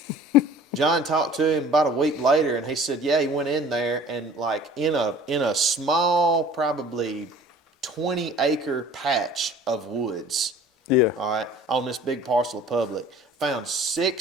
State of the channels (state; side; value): normal; both; correlation 0.47